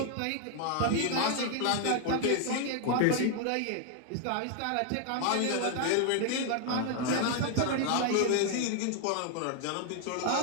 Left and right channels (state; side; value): different; both; correlation 0.00